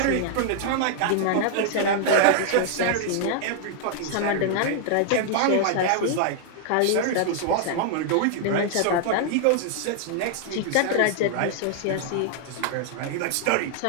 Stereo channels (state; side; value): different; both; correlation -0.01